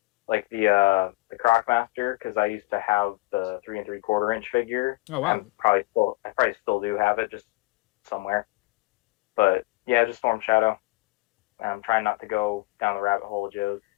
like the Crocmaster, because I used to have the 3 3/4 inch figure. Oh wow! I probably still do have it, just somewhere. But yeah, just Storm Shadow. I'm trying not to go down the rabbit hole of Joe's.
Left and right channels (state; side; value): quieter; right; 22.6 dB